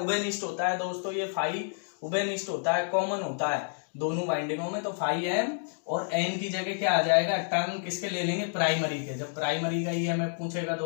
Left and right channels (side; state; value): right; silent; digital silence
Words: होता है दोस्तों। ये फाई उभयनिष्ठ होता है, कॉमन होता है दोनों बाइंडिंगों में। तो फाई एम और एन की जगह क्या आ जाएगा? टर्म किसके ले लेंगे? प्राइमरी के। जब प्राइमरी का ईएमएफ पूछेगा